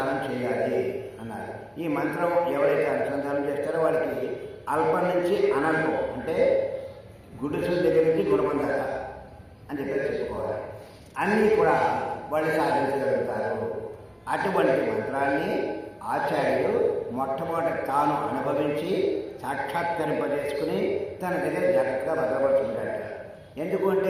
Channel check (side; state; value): both; identical; correlation 1.00